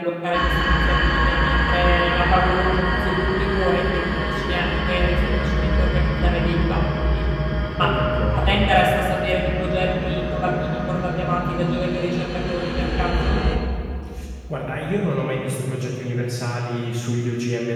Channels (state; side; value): identical; both; correlation 1.00